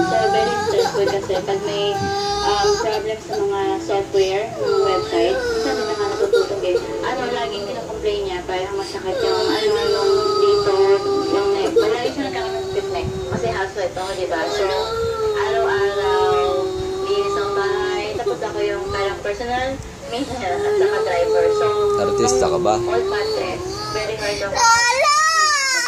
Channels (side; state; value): both; identical; correlation 1.00